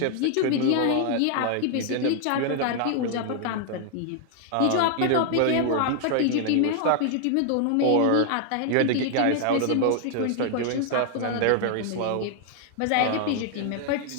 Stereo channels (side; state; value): both; different; correlation 0.00